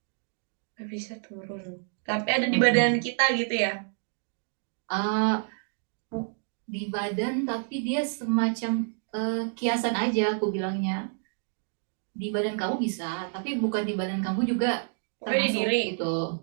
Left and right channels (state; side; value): silent; left; 59 dB below the other